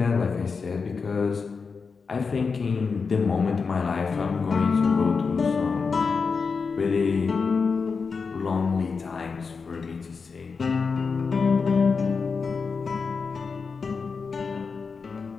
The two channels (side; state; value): right; quieter; 5.0 dB